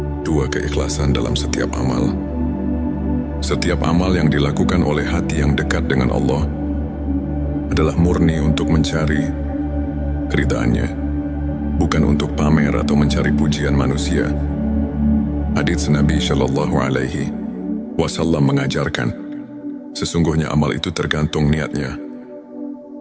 2. Keikhlasan dalam setiap amal. Setiap amal yang dilakukan oleh hati yang dekat dengan Allah adalah murni untuk mencari keridhaannya, bukan untuk pamer atau mencari pujian manusia. Hadits Nabi Shallallahu Alaihi Wasallam mengajarkan, sesungguhnya amal itu tergantung niatnya.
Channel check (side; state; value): both; identical; correlation 1.00